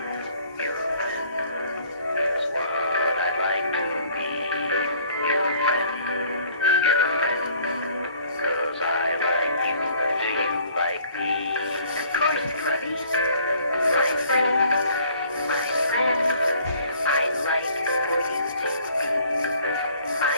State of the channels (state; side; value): inverted; both; correlation -0.56